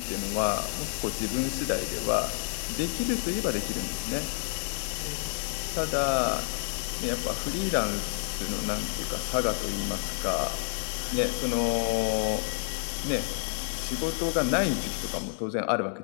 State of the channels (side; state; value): right; silent; 58 dB below the other